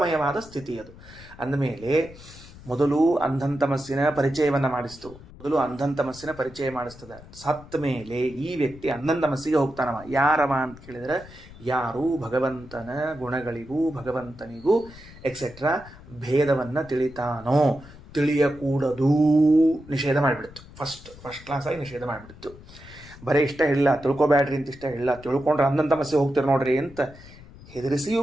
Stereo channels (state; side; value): noise; left; rumble, 19 dB below the sound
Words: ಸ್ಥಿತಿ ಅದು. ಅಂದಮೇಲೆ ಮೊದಲು ಅಂಧಂತಮಸ್ಸಿನ ಪರಿಚಯವನ್ನು ಮಾಡಿಸ್ತದೆ. ಸತ್ತ ಮೇಲೆ ಈ ವ್ಯಕ್ತಿ ಅಂಧಂತಮಸ್ಸಿಗೆ ಹೋಗ್ತಾನವ. ಯಾರವ ಅಂತ ಕೇಳಿದರೆ, ಯಾರು ಭಗವಂತನ ಗುಣಗಳಿಗೂ ಭಗವಂತನಿಗೂ ಎಕ್ಸೆಟ್ರಾ ಭೇದವನ್ನು ತಿಳಿತಾನೋ, ತಿಳಿಯಕೂಡದು ನಿಷೇಧ ಮಾಡಿಬಿಡ್ತು. ಫಸ್ಟ್ ಕ್ಲಾಸಾಗಿ ನಿಷೇಧ ಮಾಡಿಬಿಡ್ತು. ಬರೀ ಇಷ್ಟ ಹೇಳಿಲ್ಲ, ತಿಳ್ಕೊಬ್ಯಾಡ್ರಿ ಅಂತ ಇಷ್ಟ ಹೇಳಿಲ್ಲ, ತಿಳ್ಕೊಂಡ್ರೆ ಅಂಧಂತಮಸ್ಸಿಗೆ ಹೋಗ್ತೀರಿ ನೋಡ್ರಿ ಅಂತ ಹೆದರಿಸಿಯೂ